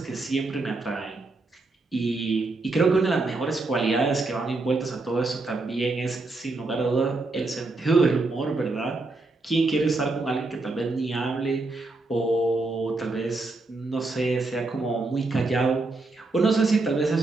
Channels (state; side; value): quieter; left; 3.3 dB